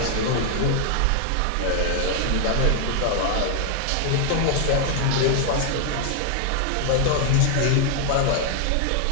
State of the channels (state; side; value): different; both; correlation 0.00